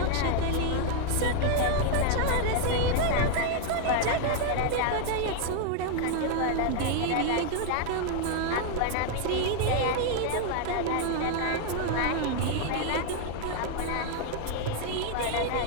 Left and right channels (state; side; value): different; both; correlation 0.00